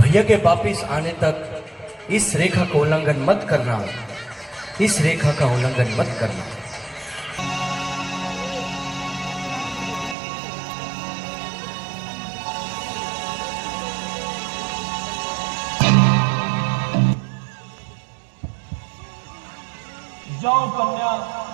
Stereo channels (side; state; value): left; drops out; at 10.2 s